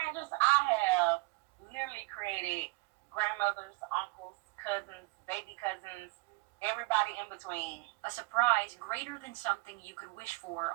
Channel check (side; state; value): left; quieter; 24.5 dB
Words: I have literally created grandmothers, uncles, cousins, baby cousins, everybody in between. A surprise greater than something you could wish for